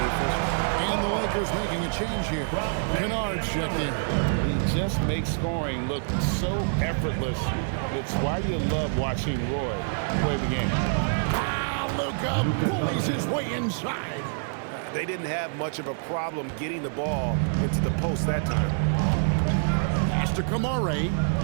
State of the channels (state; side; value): silent; left; digital silence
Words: the official. And the Lakers making a change here. Kennard's checked in. He just makes scoring look so effortless. It's why you love watching Roy play the game. Luka bullies his way inside. They didn't have much of a problem getting the ball into the post that time. Pass to Kamara.